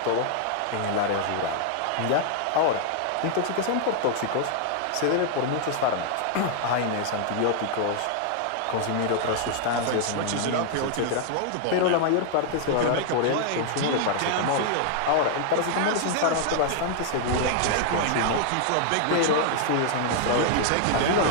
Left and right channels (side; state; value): both; different; correlation 0.00